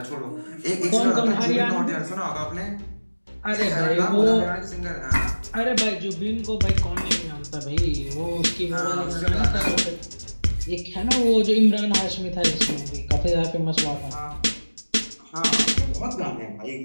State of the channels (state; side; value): inverted; both; correlation -1.00